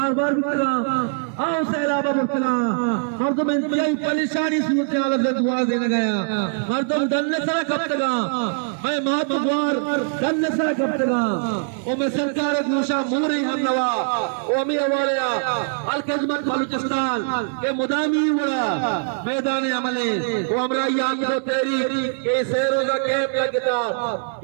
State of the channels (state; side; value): silent; left; digital silence